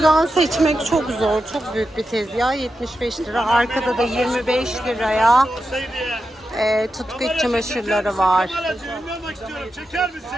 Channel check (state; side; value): normal; both; correlation 0.89